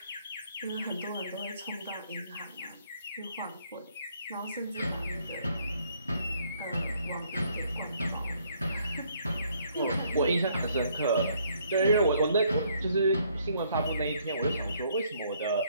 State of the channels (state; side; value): inverted; both; correlation -0.67